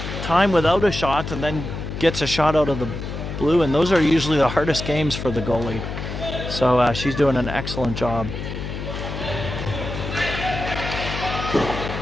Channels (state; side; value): noise; left; hum, 6 dB below the sound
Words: time without a shot and then gets a shot out of the blue, and those are usually the hardest games for the goalie. So she's doing an excellent job.